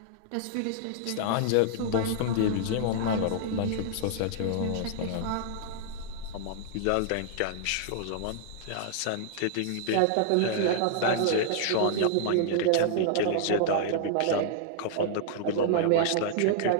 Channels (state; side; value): different; both; correlation -0.01